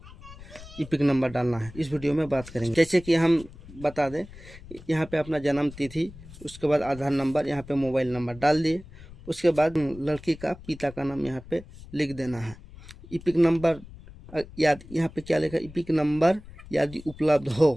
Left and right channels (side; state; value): left; noise; rumble, 18 dB below the sound